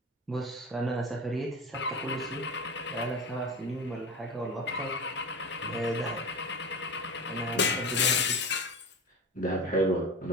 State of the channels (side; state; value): both; normal; correlation 0.27